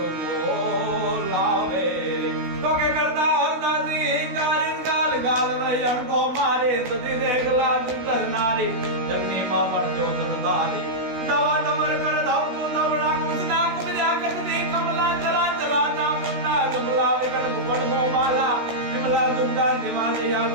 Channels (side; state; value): left; late; 16 ms